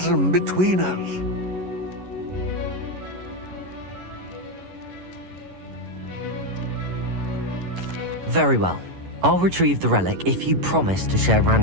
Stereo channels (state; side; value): late; left; 11 ms